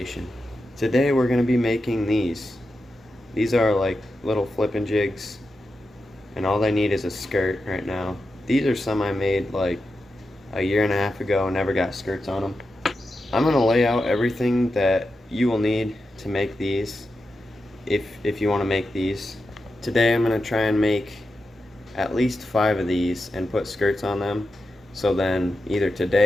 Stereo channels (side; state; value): both; normal; correlation 0.89